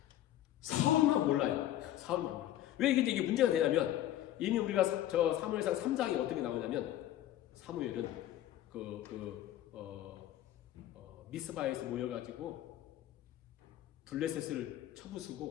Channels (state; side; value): quieter; right; 13.0 dB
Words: 사울만 몰라요. 사울만 몰라요. 왜 이게 문제가 되냐면 이미 우리가 사무엘상 3장에 어떤 게 나오냐면 사무엘은 미스바에서 모여가지고 블레셋을